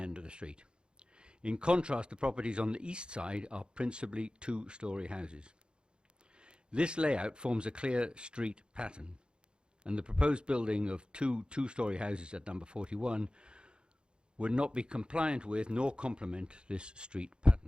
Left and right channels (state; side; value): late; left; 0.051 ms